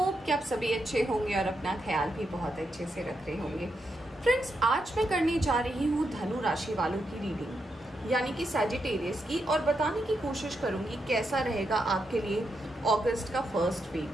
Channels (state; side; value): normal; both; correlation 0.83